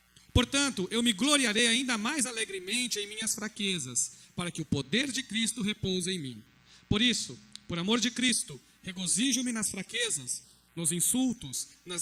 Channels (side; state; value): both; identical; correlation 1.00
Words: Portanto, eu me gloriarei ainda mais alegremente em minhas fraquezas, para que o poder de Cristo repouse em mim. Por isso, por amor de Cristo, regozijo-me nas fraquezas, nos insultos, nas